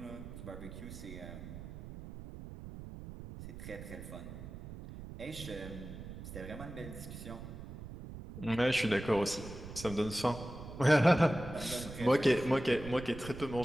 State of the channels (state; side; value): noise; right; rumble, 11 dB below the sound